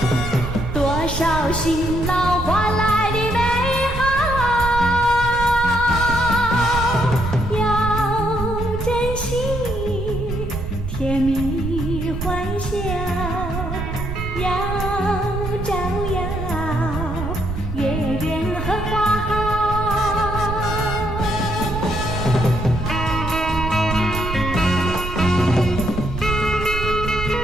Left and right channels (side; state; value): right; noise; rumble, 6 dB below the sound